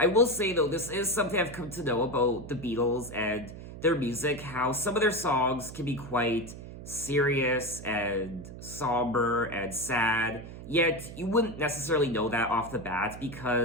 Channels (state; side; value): noise; right; hum, 13 dB below the sound